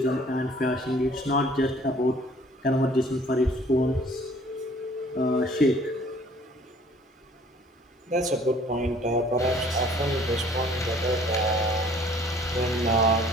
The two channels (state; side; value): normal; both; correlation 0.55